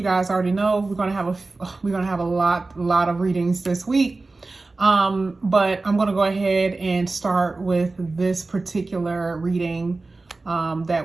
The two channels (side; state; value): left; quieter; 3.4 dB